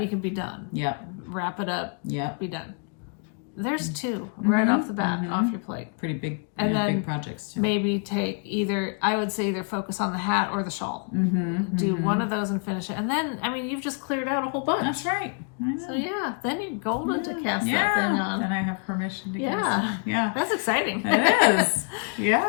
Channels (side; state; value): right; quieter; 39.3 dB